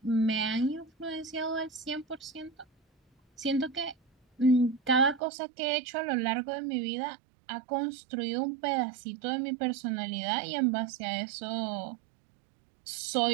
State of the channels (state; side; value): drops out; left; at 5.2 s